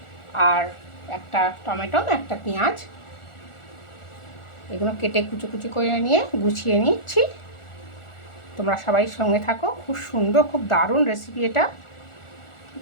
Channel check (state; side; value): late; right; 1.4 ms